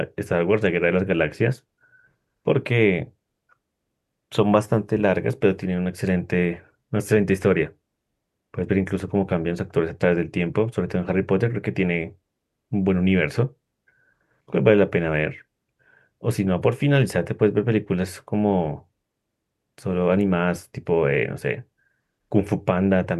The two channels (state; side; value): identical; both; correlation 1.00